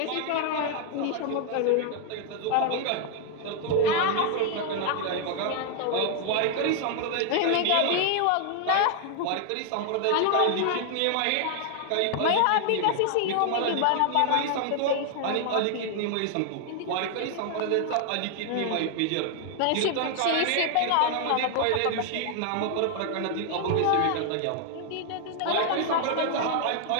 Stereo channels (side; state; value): both; different; correlation 0.00